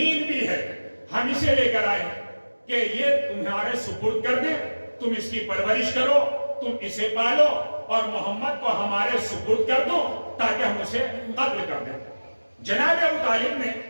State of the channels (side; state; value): both; inverted; correlation -1.00